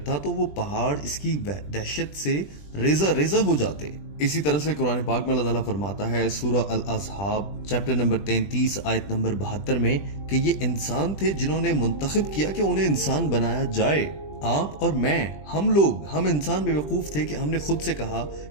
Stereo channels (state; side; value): late; right; 20 ms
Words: تو وہ پہاڑ اس کی دہشت سے ریزہ ریزہ ہو جاتے۔ اسی طرح سے قرآن پاک میں اللہ تعالیٰ فرماتا ہے سورہ الاصحاب چیپٹر نمبر 33 آیت نمبر 72 میں کہ یہ انسان تھے جنہوں نے منتخب کیا کہ انہیں انسان بنایا جائے۔ آپ اور میں، ہم انسان بے وقوف تھے کہ ہم نے خود سے کہا